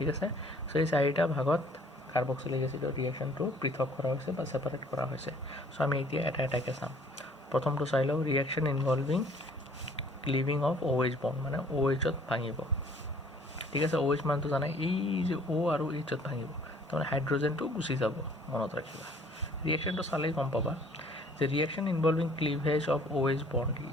আছে। চ' এই 4টা ভাগত কাৰ্বক্সিলিক এচিডৰ ৰিয়েকশ্যনটো পৃথক কৰা হৈছে বা ছেপাৰেট কৰা হৈছে। চ' আমি এতিয়া এটা এটাকৈ চাম। প্ৰথমটো চাই লওঁ, reaction involving cleaving of OH bond, মানে OHত ভাঙিব, ঠিক আছে। OH মানটো জানাই, এই যে O আৰু Hত ভাঙিব, তাৰমানে হাইড্ৰজেনটো গুচি যাব, মনত ৰাখিবা। ৰিয়েকশ্যনটো চালেই গম পাবা যে reaction involving cleavage of OH bond,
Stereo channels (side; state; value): both; normal; correlation 0.57